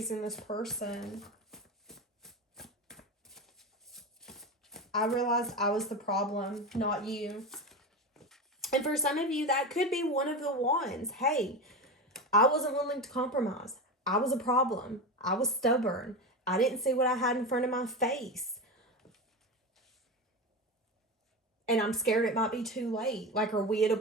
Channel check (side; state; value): both; normal; correlation 0.21